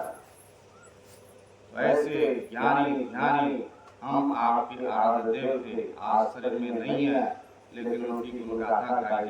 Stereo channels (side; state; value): both; identical; correlation 1.00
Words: वैसे ज्ञानी ज्ञानी हम आपके आराध्य देव थे, आज शरीर में नहीं है लेकिन उनकी गुणगाथा गाई